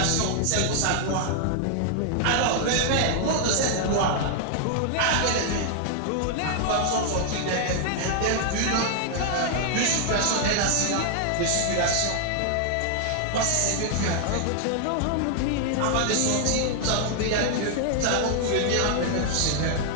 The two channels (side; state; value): both; different; correlation 0.00